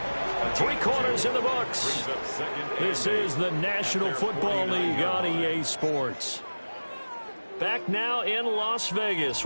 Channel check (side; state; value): both; inverted; correlation -1.00